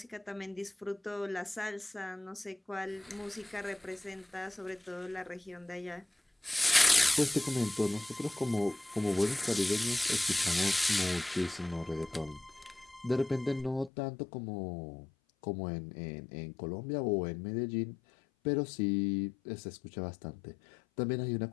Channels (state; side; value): drops out; right; at 13.9 s